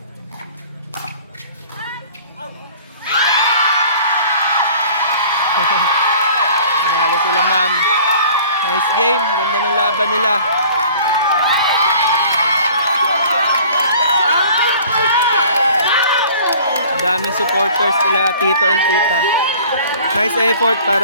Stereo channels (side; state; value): both; inverted; correlation -0.49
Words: Panalo sila, ma'am. Nice game. Ganda ng laban nila. Daming supporters sila, tito and tita. Nice effort